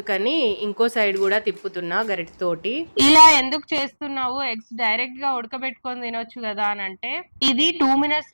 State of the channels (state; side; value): inverted; both; correlation -1.00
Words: ఇంకో సైడ్ కూడా తిప్పుతున్నా గరిటెతోటి. ఇలా ఎందుకు చేస్తున్నావు, ఎగ్స్ డైరెక్ట్ గా ఉడకబెట్టుకొని తినొచ్చు కదా అని అంటే, ఇది 2